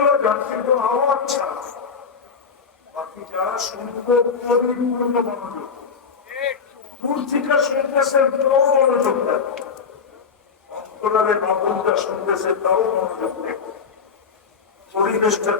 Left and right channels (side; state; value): right; quieter; 5.8 dB